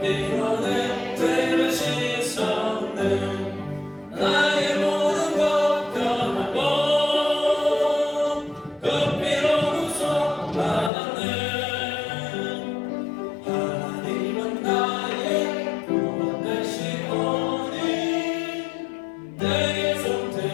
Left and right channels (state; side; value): drops out; right; at 10.9 s